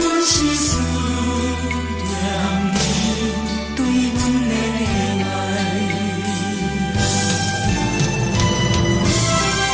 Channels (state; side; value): identical; both; correlation 1.00